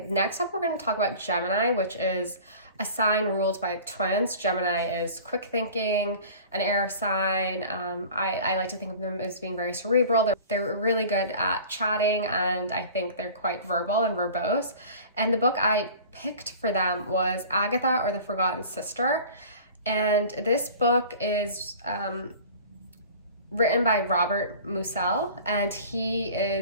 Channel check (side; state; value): both; inverted; correlation -0.42